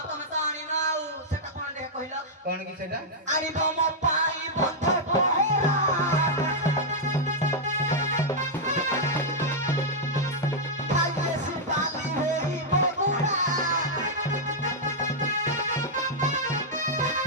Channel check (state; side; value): normal; both; correlation -0.06